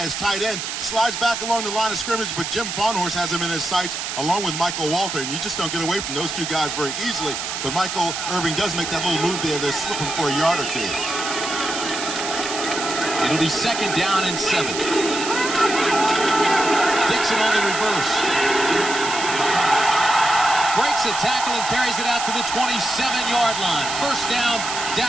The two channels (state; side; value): noise; right; hiss, 5 dB below the sound